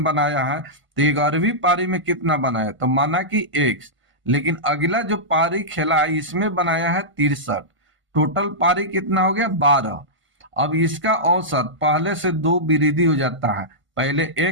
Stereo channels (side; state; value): left; late; 1.5 ms